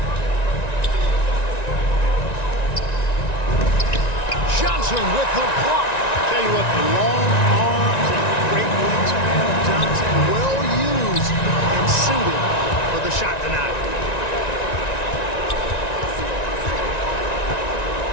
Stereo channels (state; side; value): late; right; 1.9 ms